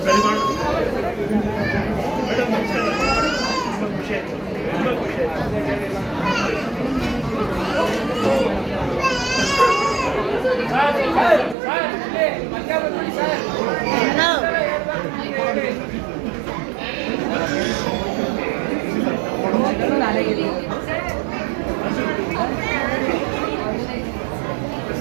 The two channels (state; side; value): drops out; left; at 11.6 s